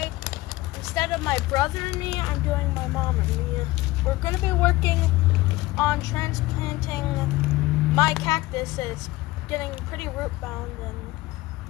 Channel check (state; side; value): quieter; right; 18.8 dB